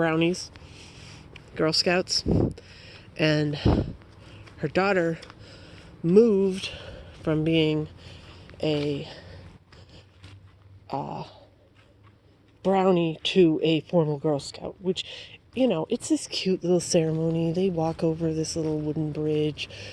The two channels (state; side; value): identical; both; correlation 1.00